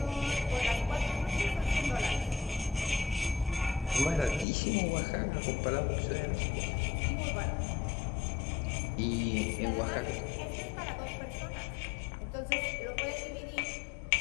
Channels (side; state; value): right; drops out; at 4.5 s